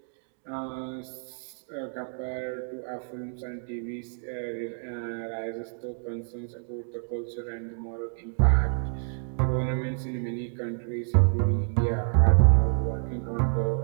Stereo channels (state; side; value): silent; left; digital silence